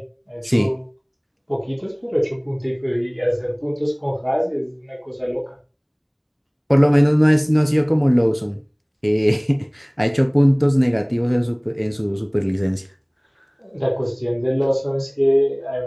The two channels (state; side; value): identical; both; correlation 1.00